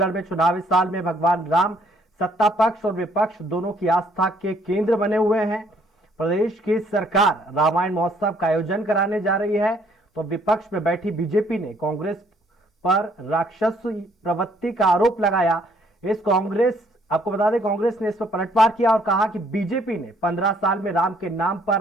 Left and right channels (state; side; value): normal; both; correlation 0.65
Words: में चुनावी साल में भगवान राम सत्ता पक्ष और विपक्ष दोनों की आस्था के केंद्र बने हुए हैं। प्रदेश की सरकार रामायण महोत्सव का आयोजन कराने जा रही है, तो विपक्ष में बैठी बीजेपी ने कांग्रेस पर राक्षस प्रवृत्ति का आरोप लगाया। आपको बता दें, कांग्रेस ने इस पर पलटवार किया और कहा कि बीजेपी ने 15 साल में राम के नाम पर